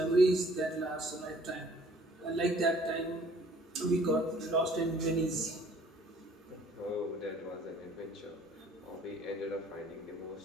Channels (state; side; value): normal; both; correlation 0.56